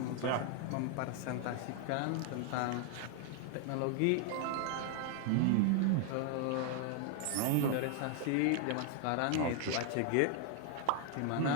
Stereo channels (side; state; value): both; different; correlation 0.00